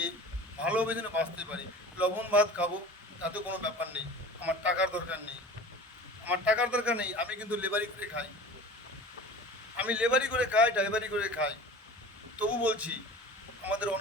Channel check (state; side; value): normal; both; correlation 0.39